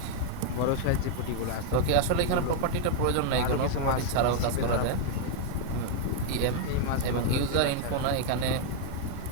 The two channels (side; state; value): both; different; correlation 0.00